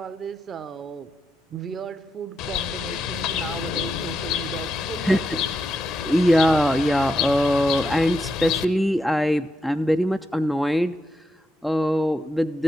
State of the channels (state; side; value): normal; both; correlation 0.84